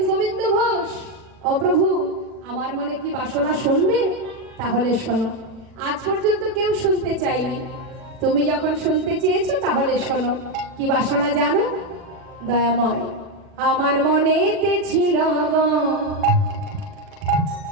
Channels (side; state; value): left; late; 40 ms